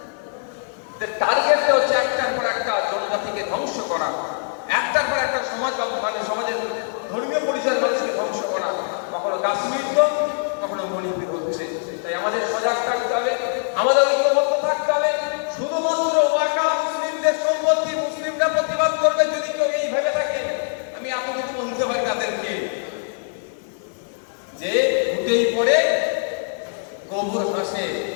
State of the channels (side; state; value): right; silent; digital silence